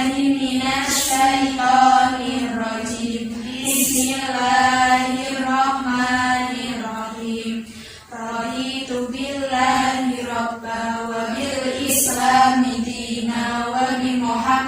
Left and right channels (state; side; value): identical; both; correlation 1.00